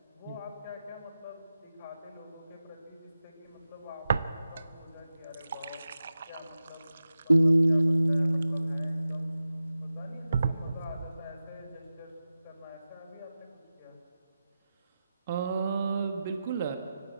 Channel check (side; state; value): both; inverted; correlation -0.94